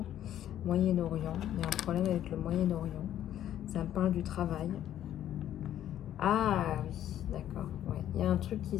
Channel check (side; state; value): right; quieter; 11.5 dB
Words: Moyen-Orient, il y a un problème avec le Moyen-Orient. Ça me parle du travail. Ah oui, d'accord. Ouais. Il y a un truc qui